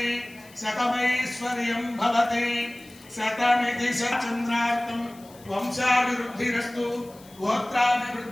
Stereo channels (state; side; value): noise; left; hiss, 24 dB below the sound